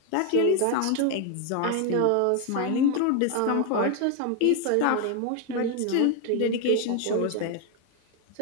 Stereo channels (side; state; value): both; different; correlation 0.01